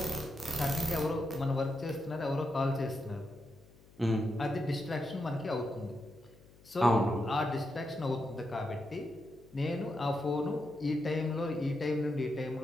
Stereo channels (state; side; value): noise; left; hum, 25 dB below the sound